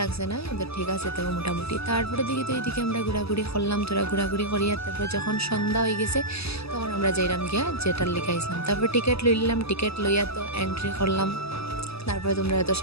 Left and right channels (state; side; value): late; right; 0.78 ms